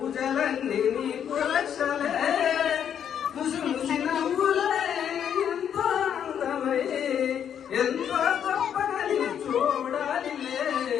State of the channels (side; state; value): right; quieter; 8.8 dB